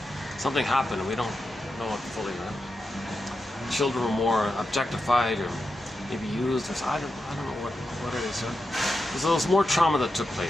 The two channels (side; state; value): both; normal; correlation 0.88